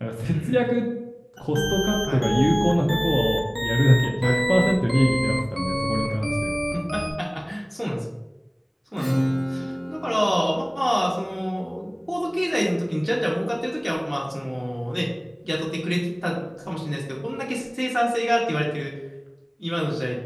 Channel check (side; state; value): both; identical; correlation 1.00